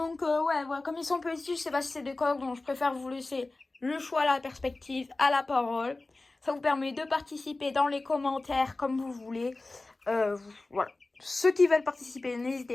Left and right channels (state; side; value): quieter; right; 3.2 dB